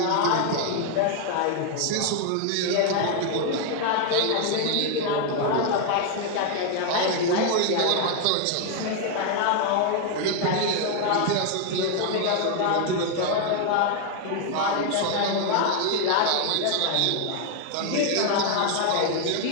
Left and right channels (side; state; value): both; different; correlation 0.00